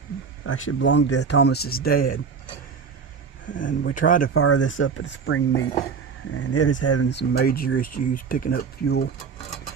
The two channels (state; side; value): quieter; left; 5.9 dB